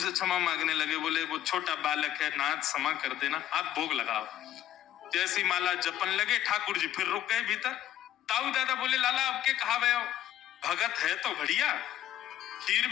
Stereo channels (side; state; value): right; quieter; 12.0 dB